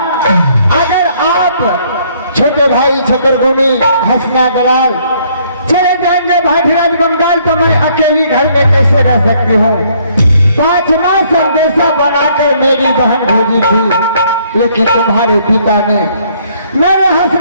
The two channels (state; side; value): inverted; both; correlation -0.65